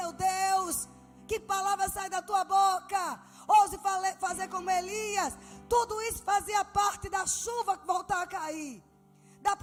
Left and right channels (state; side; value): identical; both; correlation 1.00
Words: Deus? Que palavra sai da tua boca? Ouse fazer como Elias. Tudo isso fazia parte da chuva que voltar a cair, da